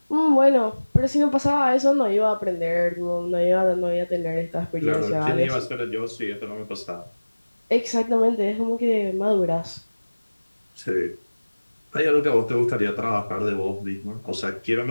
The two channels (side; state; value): both; inverted; correlation -1.00